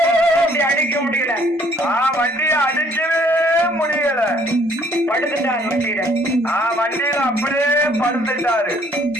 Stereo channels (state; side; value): normal; both; correlation 0.61